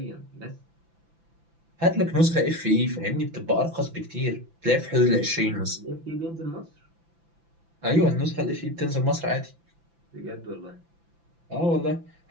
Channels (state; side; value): late; left; 5.9 ms